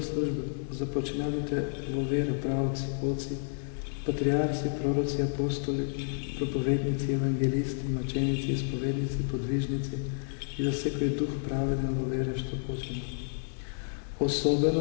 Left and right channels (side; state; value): right; silent; digital silence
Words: служба за починалите во вера правци, оци, патриарси, пророци, апостоли, проповедници, евангелисти, маченици, исповедници, подвижници и за секој дух праведен во вера што почина.